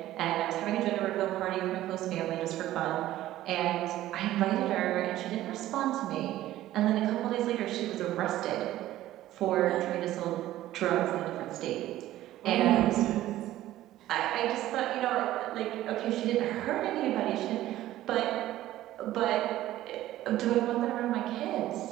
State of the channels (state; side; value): quieter; left; 14.5 dB